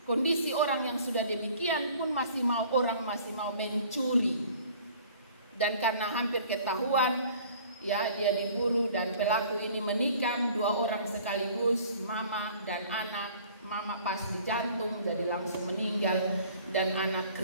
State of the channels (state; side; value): inverted; both; correlation -0.51